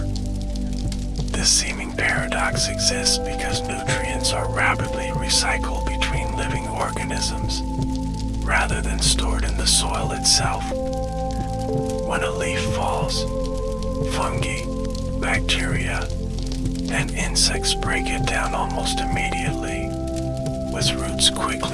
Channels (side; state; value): both; identical; correlation 1.00